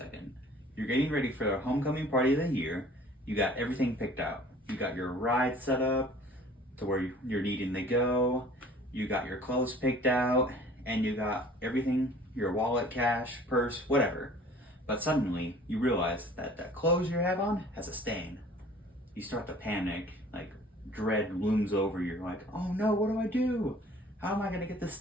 You're getting ready for the homecoming party of the year. You got everything picked out. You got your ride set up to where you're needing to go. You got your clothes picked out, and you got everything, your wallet, cash, purse, whatever. But suddenly you realize that that clothes you have on has a stain. You start to panic, like dread looms over you. You're like, oh no, what do I do? How am I gonna get this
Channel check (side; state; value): both; normal; correlation 0.50